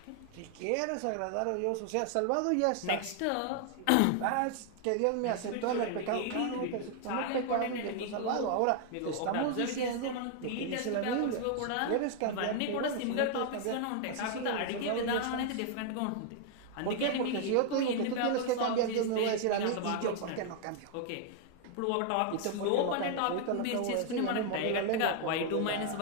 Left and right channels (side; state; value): both; different; correlation 0.00